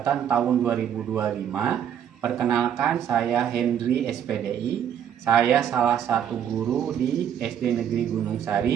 tahun 2025. Perkenalkan, saya Hendri SPDI. Saya salah satu guru di SD Negeri Gunung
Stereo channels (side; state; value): left; quieter; 9.2 dB